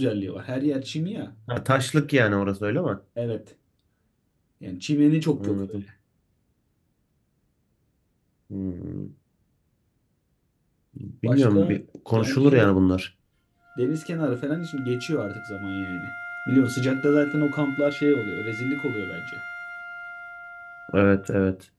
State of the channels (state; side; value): identical; both; correlation 1.00